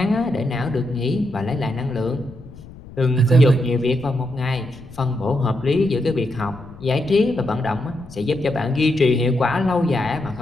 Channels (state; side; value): noise; left; rumble, 17 dB below the sound